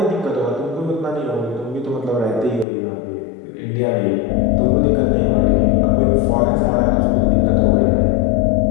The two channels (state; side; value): drops out; right; at 2.7 s